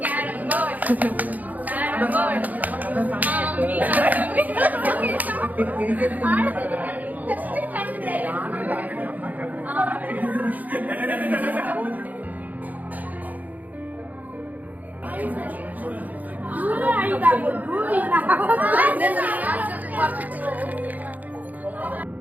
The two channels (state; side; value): late; left; 0.080 ms